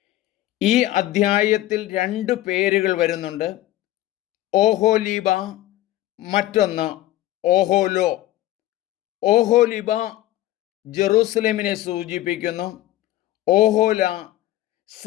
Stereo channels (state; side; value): quieter; right; 15.1 dB